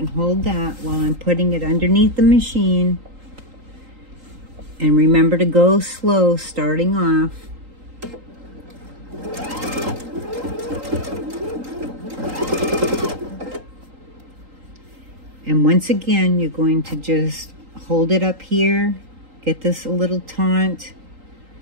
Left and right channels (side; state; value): left; late; 3.8 ms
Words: hold that while I'm putting it underneath the machine. And remember to go slow starting off. And once again, you're going to just hold it up here, get this a little taut,